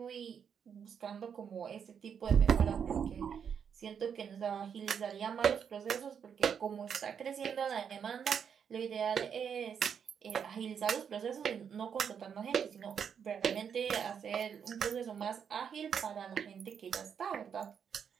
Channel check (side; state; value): left; quieter; 7.4 dB